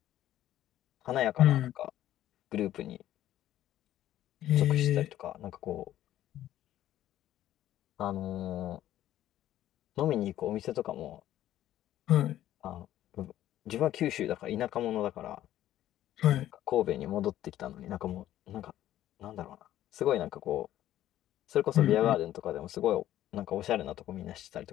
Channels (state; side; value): quieter; right; 12.9 dB